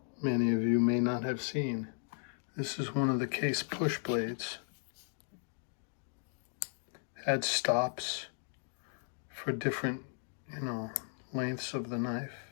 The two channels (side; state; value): right; silent; digital silence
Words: many of you may not have seen. This is one of the Case push blades. Had stops for different, lengths of the knife.